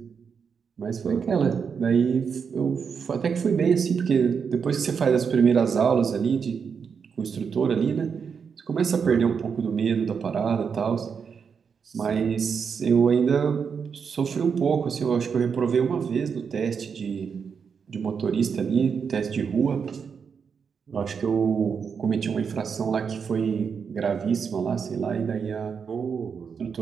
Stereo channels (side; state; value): left; quieter; 6.3 dB